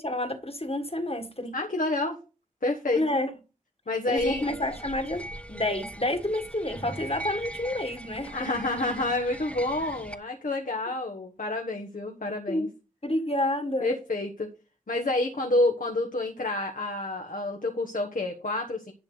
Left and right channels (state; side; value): normal; both; correlation 0.46